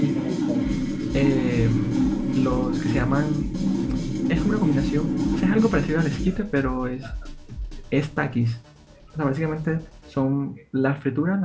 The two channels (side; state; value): both; identical; correlation 1.00